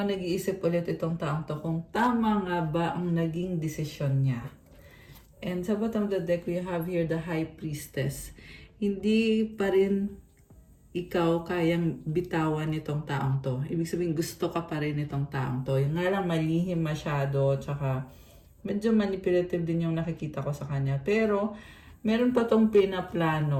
nag-iisip ulit itong taong to kung tama nga ba ang naging desisyon niya. And sa bottom of the deck, we have here the High Priestess. Hindi pa rin ikaw kayang bitawan nitong taong to. Ibig sabihin, gusto ka pa rin nitong taong to. Yung nga lang malihim masyado, tsaka medyo manipulative din yung nakikita ko sa kanya. Pero, meron pa tong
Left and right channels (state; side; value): identical; both; correlation 1.00